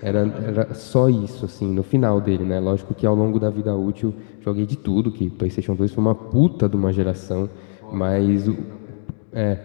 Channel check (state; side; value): silent; right; digital silence